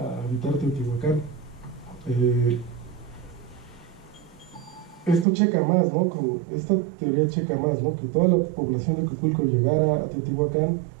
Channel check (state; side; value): drops out; left; at 5.2 s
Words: habitar Teotihuacán. Esto checa más, ¿no?, con esta teoría checa más, ¿no?, que toda la población de Cuicuilco llegara a Teotihuacán,